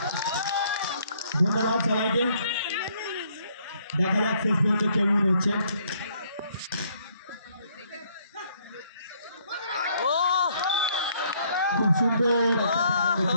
ধন্যবাদ সবাইকে। দেখা যাক শেষ পর্যন্ত কেমন হচ্ছে। খুব সুন্দর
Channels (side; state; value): both; inverted; correlation -0.67